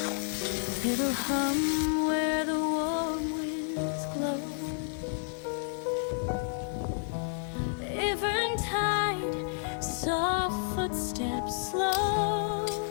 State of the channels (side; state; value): right; silent; 57 dB below the other